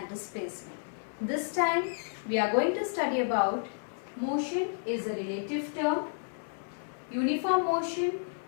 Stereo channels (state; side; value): silent; right; 57 dB below the other